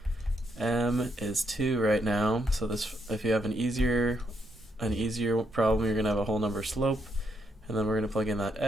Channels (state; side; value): normal; both; correlation 0.77